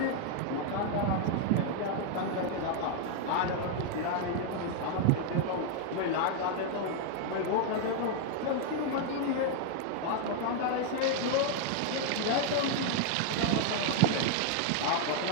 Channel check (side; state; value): both; different; correlation 0.00